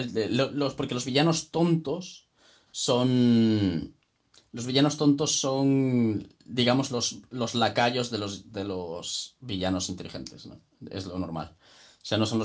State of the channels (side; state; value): both; identical; correlation 1.00